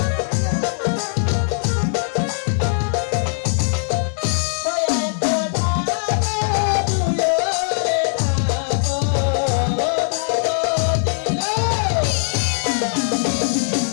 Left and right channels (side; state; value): right; silent; digital silence